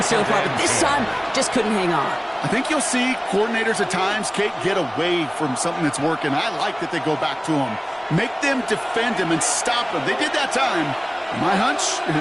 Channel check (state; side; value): identical; both; correlation 1.00